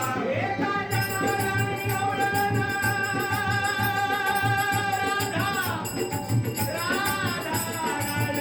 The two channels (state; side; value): identical; both; correlation 1.00